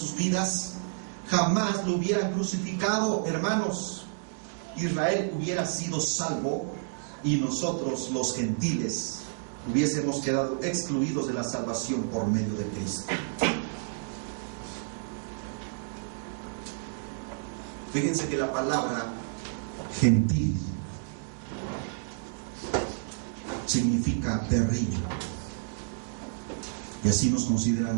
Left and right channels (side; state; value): left; silent; digital silence